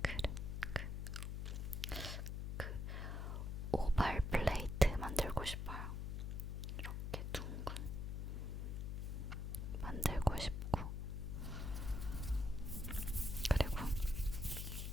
그 오발 플레이트 만들고 싶어요. 이렇게 둥근 만들고 싶고, 그리고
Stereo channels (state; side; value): noise; left; hum, 2 dB below the sound